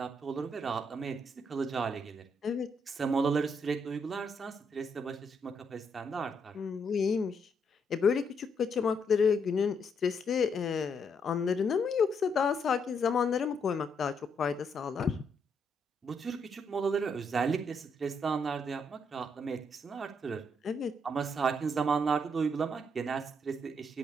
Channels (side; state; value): both; normal; correlation 0.75